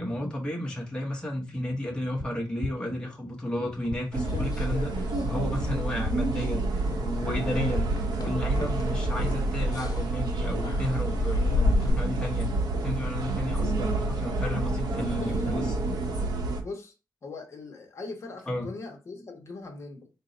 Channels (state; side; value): normal; both; correlation 0.73